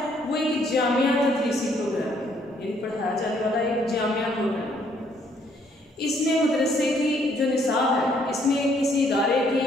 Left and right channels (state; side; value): normal; both; correlation 0.67